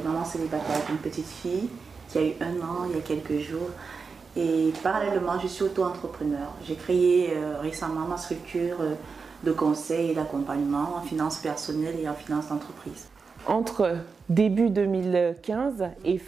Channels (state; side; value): quieter; left; 5.0 dB